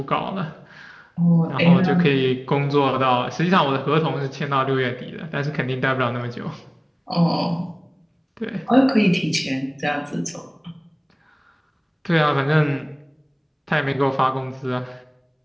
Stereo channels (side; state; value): both; identical; correlation 1.00